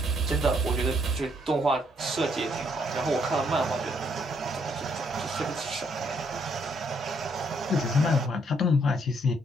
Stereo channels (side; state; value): both; normal; correlation 0.70